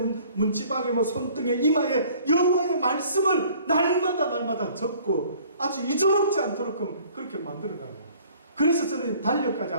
문지방에 뭐 손등에 이마에 여호와의 말씀을 날마다 적고 아주 잊어먹지 않도록 그렇게 만들어가요. 그래서 저는 달력까지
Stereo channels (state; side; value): inverted; both; correlation -0.54